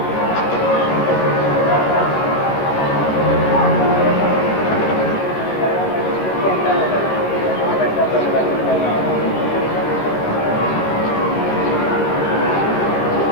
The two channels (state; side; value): late; right; 28 ms